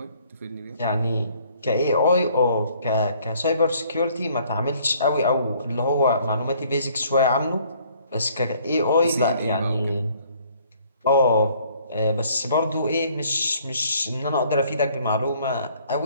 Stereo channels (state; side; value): inverted; both; correlation -0.61